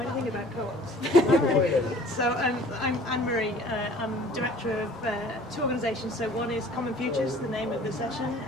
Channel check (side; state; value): both; normal; correlation 0.50